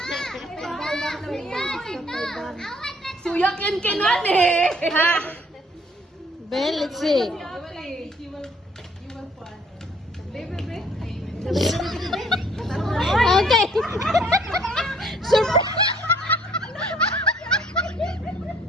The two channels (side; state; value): both; normal; correlation 0.61